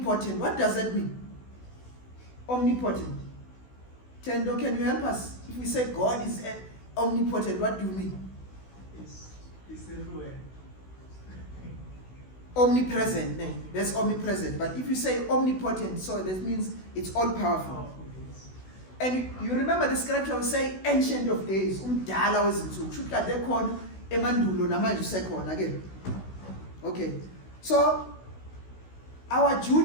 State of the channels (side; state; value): right; late; 16 ms